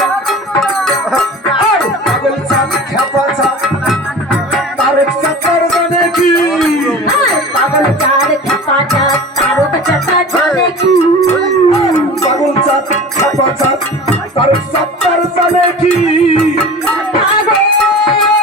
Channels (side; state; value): both; normal; correlation 0.36